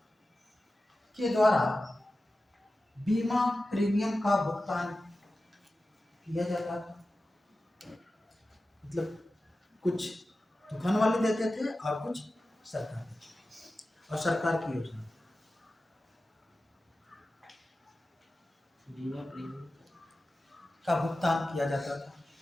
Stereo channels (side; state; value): both; normal; correlation 0.94